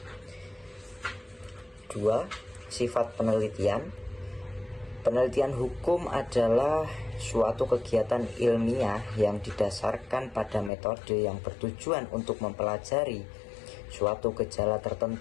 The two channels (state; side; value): drops out; right; at 10.7 s